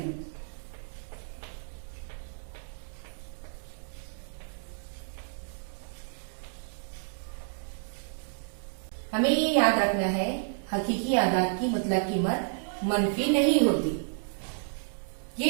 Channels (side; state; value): left; silent; digital silence